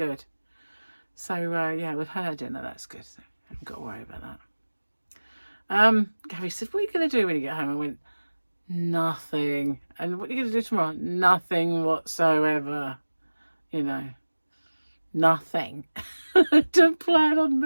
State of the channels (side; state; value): both; inverted; correlation -1.00